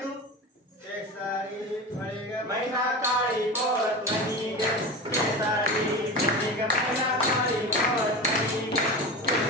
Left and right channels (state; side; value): normal; both; correlation 0.27